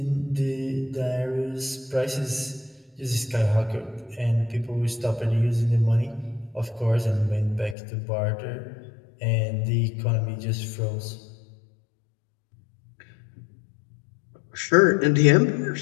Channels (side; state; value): right; drops out; at 7.8 s